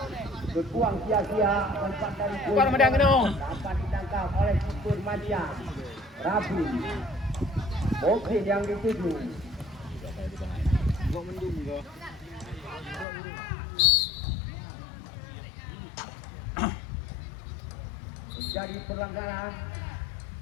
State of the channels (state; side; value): drops out; right; at 13.1 s